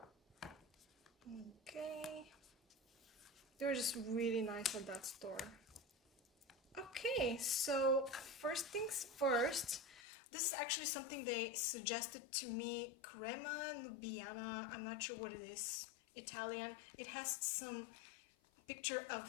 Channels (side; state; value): right; drops out; at 10.0 s